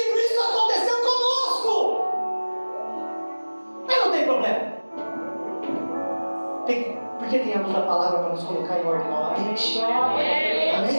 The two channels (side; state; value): both; inverted; correlation -1.00